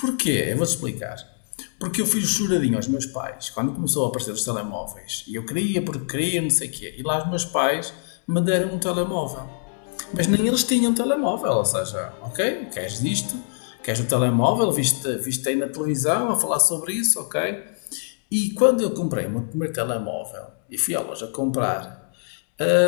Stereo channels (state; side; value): silent; right; 63 dB below the other